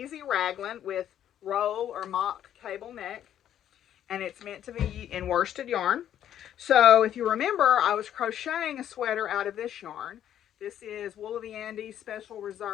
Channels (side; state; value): right; quieter; 10.6 dB